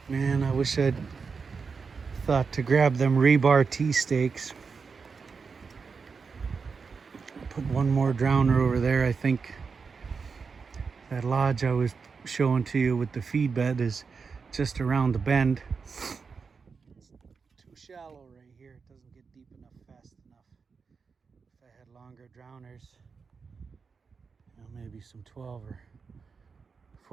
Man, I wish I'd thought to grab them rebar T-stakes. Put one more drowner over there. I think that lodge I was showing to you with the feed bed is just around the bend. It's too shallow right here. It doesn't get deep enough fast enough. If I had longer drowners, you know, maybe some 12 or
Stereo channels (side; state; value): left; quieter; 5.2 dB